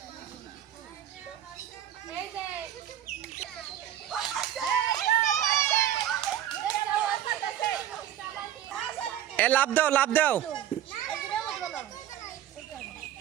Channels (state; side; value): quieter; left; 11.4 dB